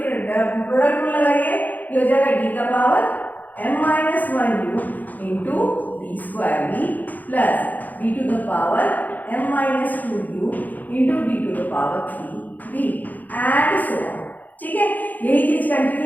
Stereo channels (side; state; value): right; late; 0.083 ms